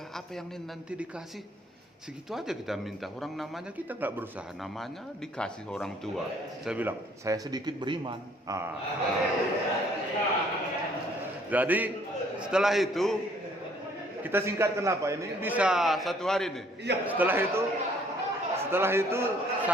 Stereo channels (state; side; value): normal; both; correlation 0.61